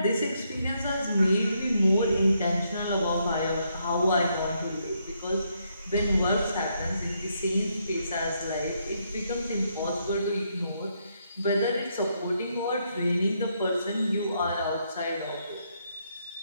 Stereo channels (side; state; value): both; inverted; correlation -0.76